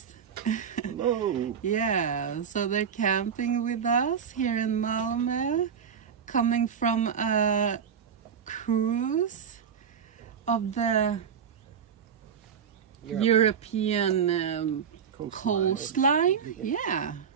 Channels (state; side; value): quieter; left; 7.4 dB